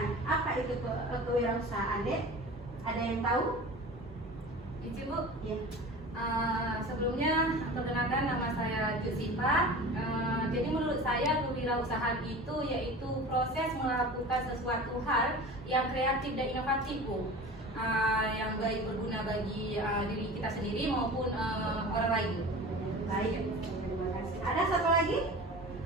Apa itu kewirausahaan, Dek? Ada yang tahu? Ici, Bu. Ya. Sebelumnya perkenalkan, nama saya Jusifa. Jadi menurut saya kewirausahaan itu yaitu proses melakukan sesuatu hal yang kreatif dan inovatif, Bu. Yang baik berguna bagi diri kita sendiri maupun orang lain. Baik, terima kasih. Ada satu lagi?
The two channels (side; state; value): both; normal; correlation 0.36